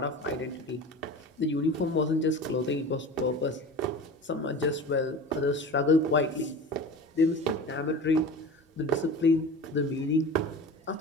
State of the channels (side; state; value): both; normal; correlation 0.35